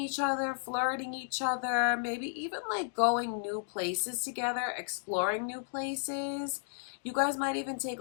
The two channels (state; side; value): silent; right; digital silence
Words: each other, flirting each other, maybe even like going new places together, exploring new places. You guys might even take